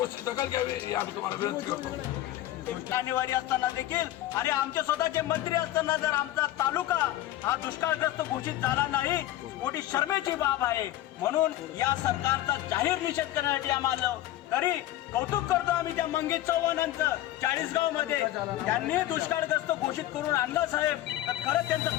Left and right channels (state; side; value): quieter; right; 14.2 dB